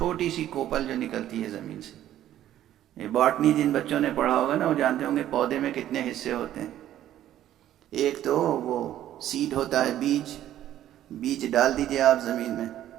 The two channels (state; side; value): quieter; left; 12.3 dB